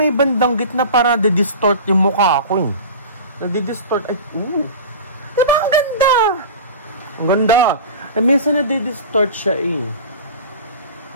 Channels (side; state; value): both; inverted; correlation -0.34